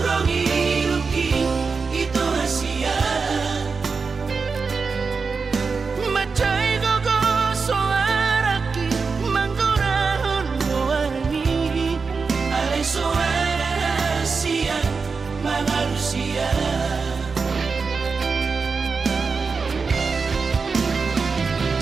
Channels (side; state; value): left; quieter; 4.8 dB